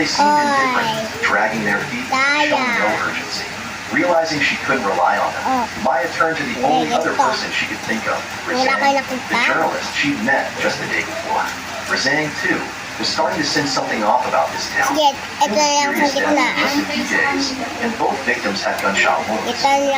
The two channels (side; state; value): both; identical; correlation 1.00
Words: seemed indifferent, dragging their feet and showing no urgency. Realizing she couldn't rely on them, Maya turned to the only other person she could think of, Wala Razang, kayo nakita? the journalist she'd met just the day before. Razang, too, was starting to sense something off about this town. Sige, Two ito na lang sa mysterious deaths in gitnaan. just a few days, and both victims had gunshot wounds. Ito